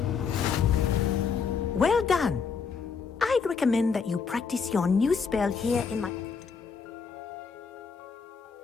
Well done. I'd recommend that you practice your new spell here in my...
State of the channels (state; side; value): quieter; right; 5.7 dB